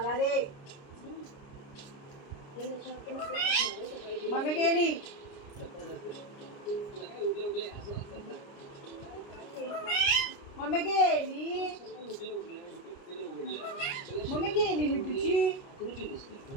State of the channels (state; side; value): late; right; 30 ms